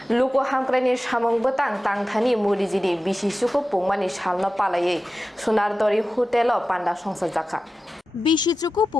Luku Hamkuraini Samwng betang tangthani murijini Bisi Chuku Pungmani salno palayei Sonar Tori Hotel Panda Khulaijakha Bisi Chuku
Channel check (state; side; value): normal; both; correlation 0.94